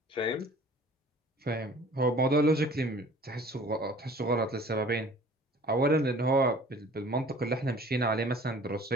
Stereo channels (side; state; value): both; normal; correlation 0.49